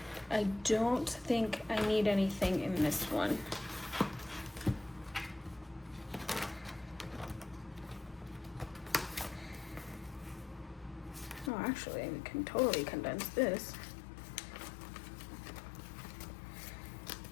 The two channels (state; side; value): drops out; right; at 11.5 s